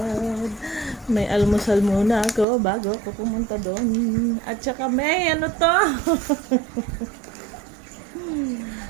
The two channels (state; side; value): drops out; left; at 2.5 s